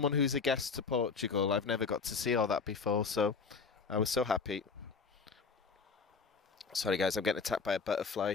who's a guest to Portugal, I've never got to see all that before. So I was so happy. Sorry guys, I'm getting attacked by a butterfly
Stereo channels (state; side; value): quieter; right; 5.1 dB